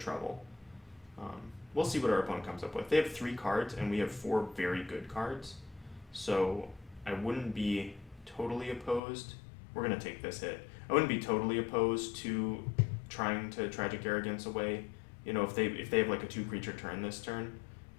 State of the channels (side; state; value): right; drops out; at 9.0 s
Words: We'll see what our opponent comes up with. They have 3 cards, and we have 4 very good cards, so I wouldn't be totally opposed. We're going to take this hit. I wouldn't be totally opposed to trying to Tragic Arrogance away. If they have like a 2-creature turn this turn,